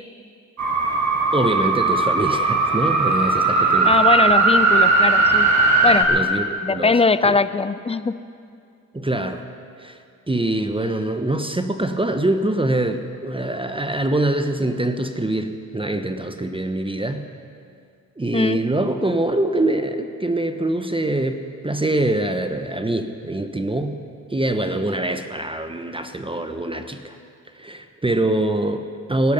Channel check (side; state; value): both; normal; correlation 0.39